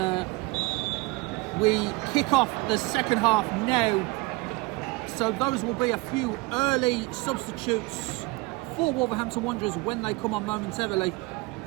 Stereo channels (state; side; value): quieter; left; 23.4 dB